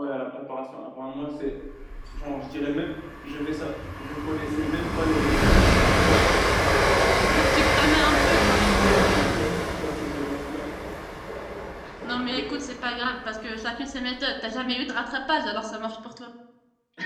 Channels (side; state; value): both; identical; correlation 1.00